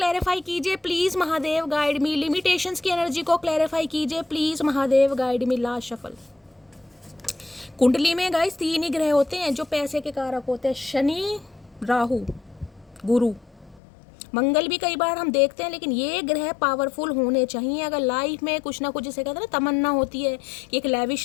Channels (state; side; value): drops out; right; at 13.8 s